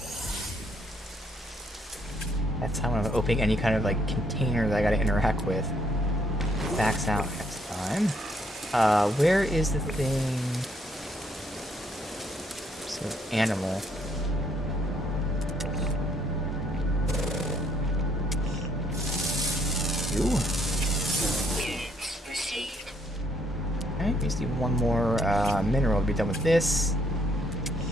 That's how I'm opening any kind of like container that I gotta interact with. Backs out next time. Where is the thing? So, animal. You. Units received. Okay, we just need one more mineral to be done with this.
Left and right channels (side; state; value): both; normal; correlation 0.69